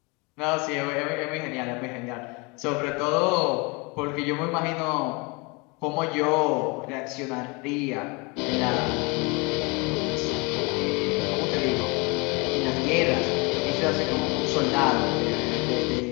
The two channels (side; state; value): right; quieter; 28.6 dB